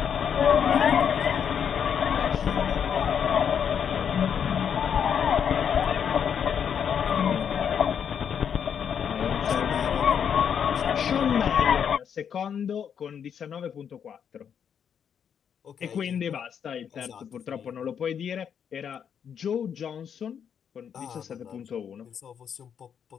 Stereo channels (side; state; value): right; quieter; 7.9 dB